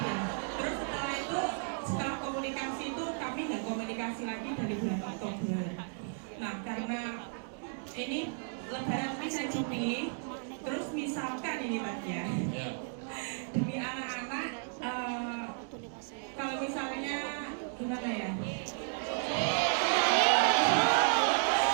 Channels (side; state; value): left; silent; 55 dB below the other